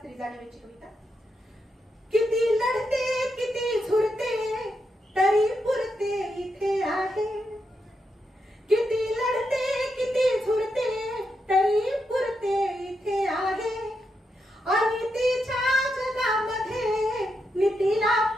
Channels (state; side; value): normal; both; correlation 0.84